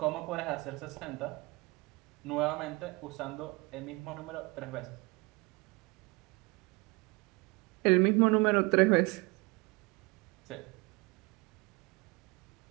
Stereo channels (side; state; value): left; quieter; 26.0 dB